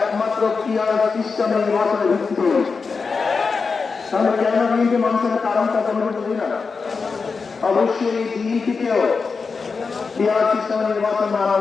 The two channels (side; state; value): right; quieter; 4.8 dB